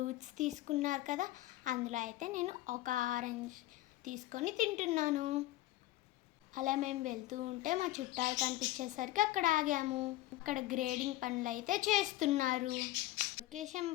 తీసుకున్నారు కదా, అందులో అయితే నేను ఒక ఆరెంజ్ తీసుకొని తింటున్నాను. అలా మేము వెళ్తూ ఉంటే మా చుట్టాలు కనిపించేసరికి అక్కడ ఆగాము. అక్కడ గ్రేడింగ్ పనులు అయితే చేస్తున్నారు. లొకేషన్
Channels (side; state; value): right; quieter; 16.7 dB